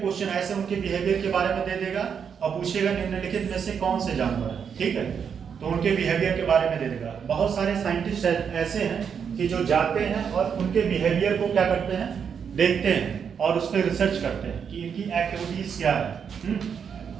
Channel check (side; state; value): left; quieter; 7.1 dB